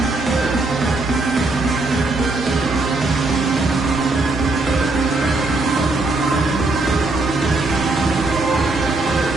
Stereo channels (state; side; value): quieter; left; 3.2 dB